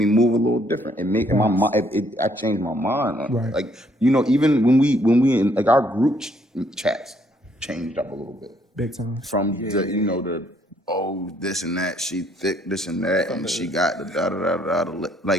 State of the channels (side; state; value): both; normal; correlation 0.67